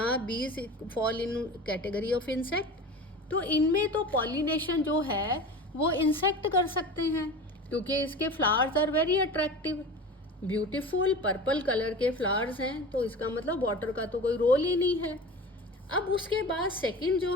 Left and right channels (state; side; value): normal; both; correlation 0.34